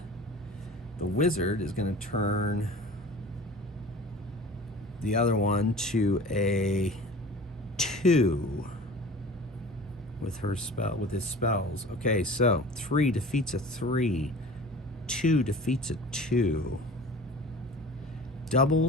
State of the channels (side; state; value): both; normal; correlation 0.41